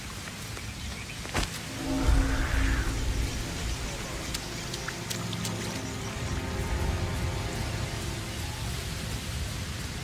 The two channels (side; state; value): both; identical; correlation 1.00